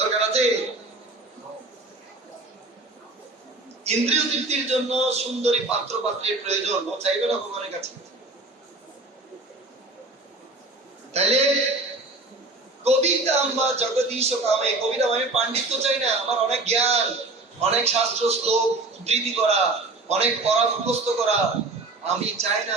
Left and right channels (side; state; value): left; quieter; 3.2 dB